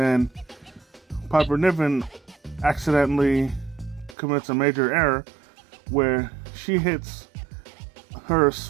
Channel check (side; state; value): left; drops out; at 4.2 s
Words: Piper Niven accidentally commits a major error where she hits her